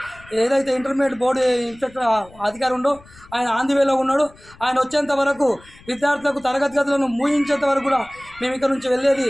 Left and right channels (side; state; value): left; noise; rumble, 24 dB below the sound